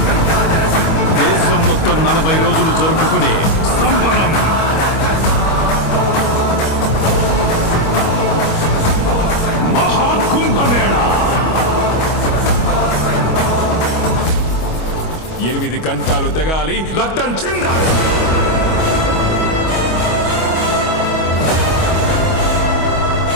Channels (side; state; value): right; late; 25 ms